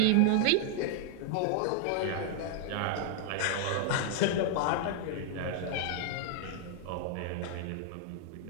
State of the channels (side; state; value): both; different; correlation 0.00